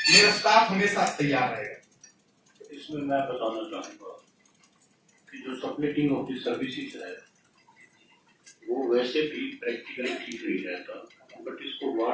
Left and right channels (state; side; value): identical; both; correlation 1.00